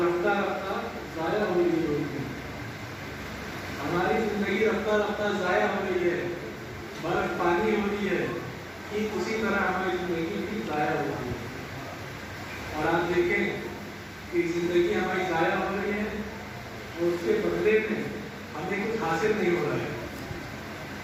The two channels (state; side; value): identical; both; correlation 1.00